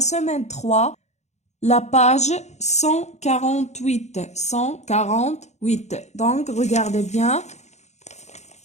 3, la page 148. 148. Donc regardez bien.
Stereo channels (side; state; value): right; late; 0.33 ms